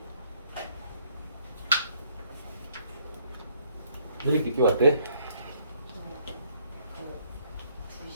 왜 이렇게 늦게 왔대?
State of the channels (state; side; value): inverted; both; correlation -0.66